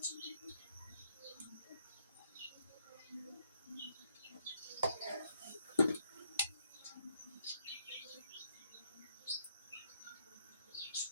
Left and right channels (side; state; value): both; inverted; correlation -0.73